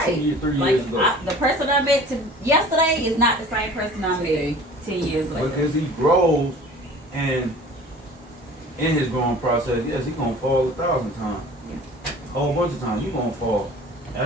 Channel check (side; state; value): both; normal; correlation 0.45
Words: 2 years, 3 years ago. The person I met yesterday is not the same person I met 10 years later. Because he grows and in his growing process, yes, he gonna fall 1,000 times. A whole bunch of times, you gonna fall.